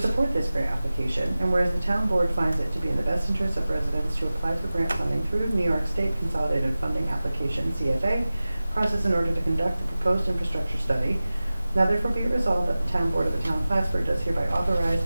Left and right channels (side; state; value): both; inverted; correlation -0.96